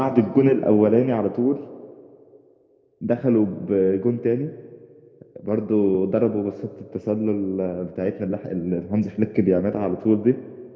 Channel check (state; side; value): identical; both; correlation 1.00